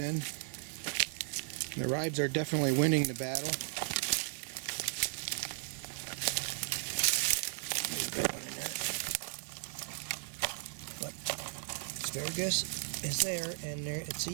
And the ribs are definitely winning the battle. There's a big one in there. But asparagus is there, and there it's a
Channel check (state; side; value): silent; left; 54 dB below the other